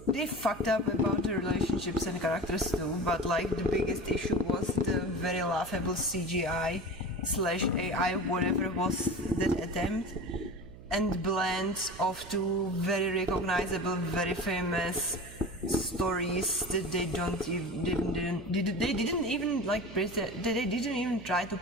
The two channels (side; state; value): right; noise; hum, 17 dB below the sound